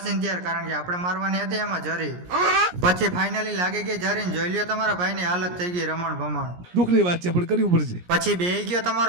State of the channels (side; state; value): left; late; 17 ms